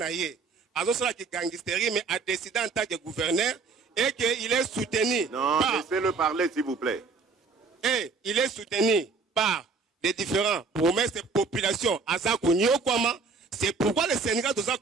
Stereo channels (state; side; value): quieter; left; 4.5 dB